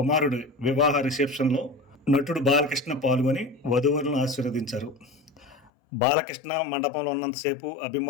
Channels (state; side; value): drops out; right; at 5.7 s